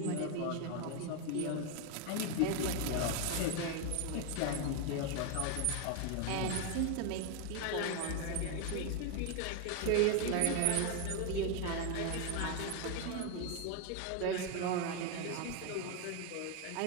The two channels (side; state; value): both; different; correlation 0.01